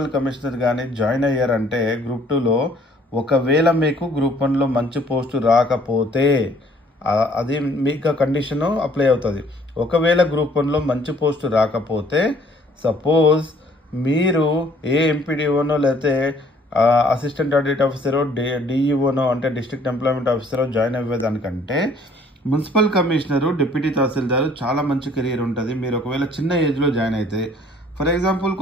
కమిషనర్ కానీ జాయిన్ అయ్యారంటే గ్రూప్ 2లో ఒకవేళ మీకు గ్రూప్ 1లో మంచి పోస్టు రాకపోతే అది మీకు కండిషన్ అప్లై అవుతుంది. ఒకవేళ గ్రూప్ 1లో మంచి పోస్టు రాకపోతే సపోజ్ మీరు ఏ ఎంపీడీఓనో లేకపోతే అసిస్టెంట్ ఆడిట్ ఆఫీసరో డిఈఓనో అంటే డిస్ట్రిక్ట్ ఎంప్లాయ్మెంట్ ఆఫీసరో జాయిన్ అయ్యేదానికంటే మున్సిపల్ కమిషనరు డిప్యూటీ తహసీల్దారు చాలా మంచి కెరీర్ ఉంటుంది. మీరు ఒకవేళ చిన్న ఏజ్లో జాయిన్ అయితే ఫర్ ఎగ్జాంపుల్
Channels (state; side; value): normal; both; correlation 0.59